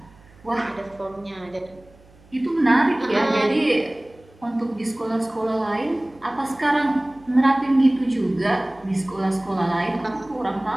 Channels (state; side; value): noise; right; hum, 27 dB below the sound